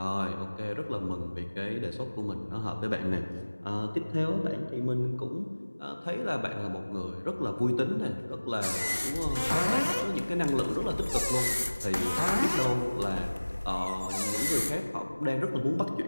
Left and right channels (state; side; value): inverted; both; correlation -1.00